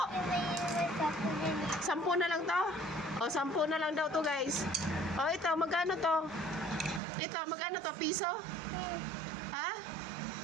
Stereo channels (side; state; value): left; drops out; at 7.0 s